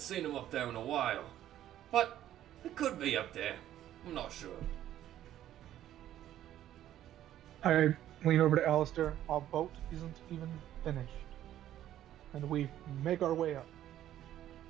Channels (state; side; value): quieter; left; 12.2 dB